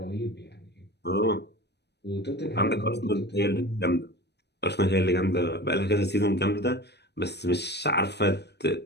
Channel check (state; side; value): late; right; 0.49 ms